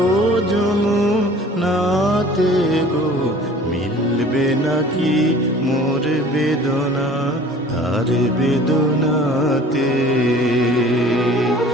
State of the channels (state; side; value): normal; both; correlation 0.47